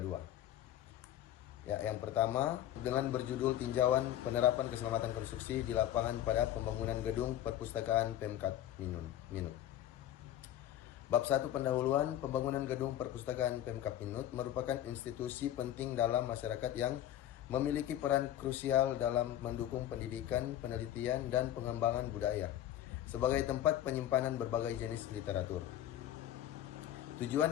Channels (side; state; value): right; quieter; 12.0 dB